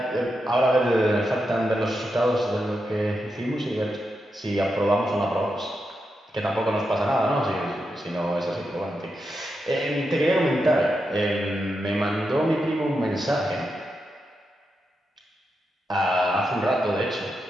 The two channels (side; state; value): both; normal; correlation 0.86